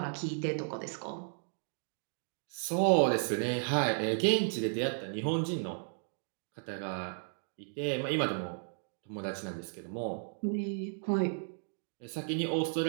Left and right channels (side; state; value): left; silent; digital silence